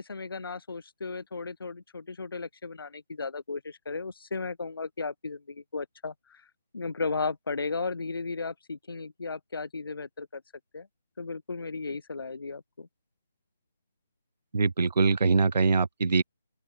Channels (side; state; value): both; inverted; correlation -0.78